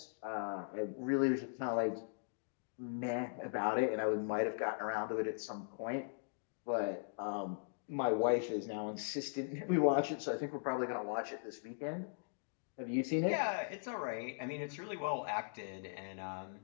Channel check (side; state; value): right; silent; digital silence